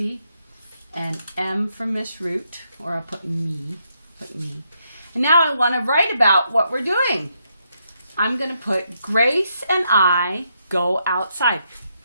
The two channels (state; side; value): inverted; both; correlation -0.78